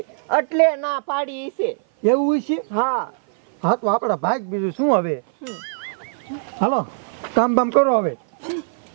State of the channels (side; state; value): left; silent; 56 dB below the other